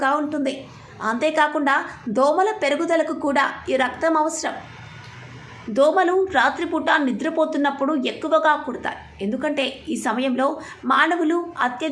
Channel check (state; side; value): identical; both; correlation 1.00